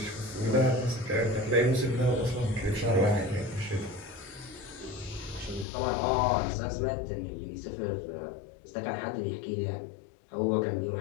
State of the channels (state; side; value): drops out; right; at 5.7 s